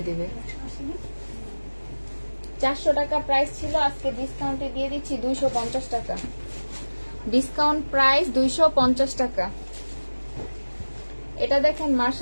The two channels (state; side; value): inverted; both; correlation -1.00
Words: দিবে। 400 টাকা প্রাইস ছিল, আজকে ডিসকাউন্টে দিয়ে দিচ্ছি 250 টাকা। ডিসকাউন্ট প্রাইস 250 টাকা। এটা দেখেন